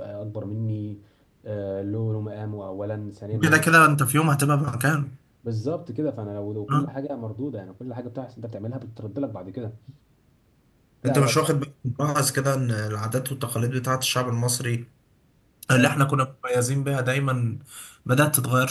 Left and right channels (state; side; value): identical; both; correlation 1.00